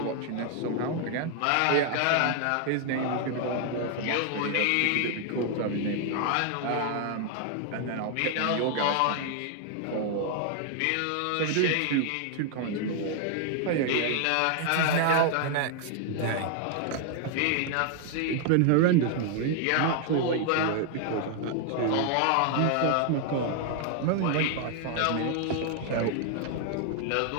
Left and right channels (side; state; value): both; different; correlation 0.00